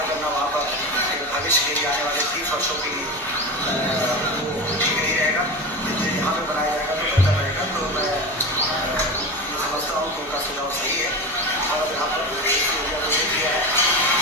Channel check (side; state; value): both; normal; correlation 0.25